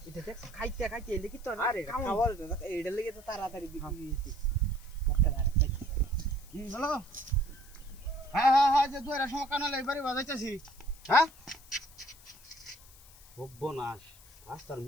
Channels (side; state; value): left; noise; hiss, 22 dB below the sound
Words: এটা দেখ খাইতে খাইতে এলে কি তো আরে খাওয়ার এইটা লাগি তো তাড়াতাড়ি বিক্রি হইছে মুখে আরেকটা কি হলো হ্যাঁ যে দুইরা সমকানা লাইবারে বাজাইতাছি হ্যাঁ সর্বনাশ রাস্তার